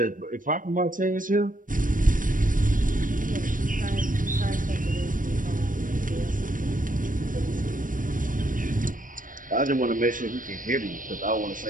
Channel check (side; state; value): left; late; 0.39 ms